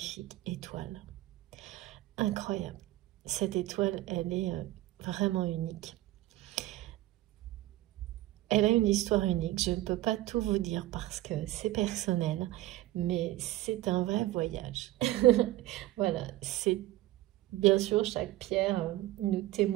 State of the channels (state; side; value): quieter; left; 16.1 dB